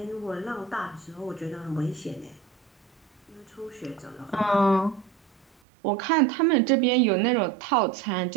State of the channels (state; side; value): drops out; left; at 5.5 s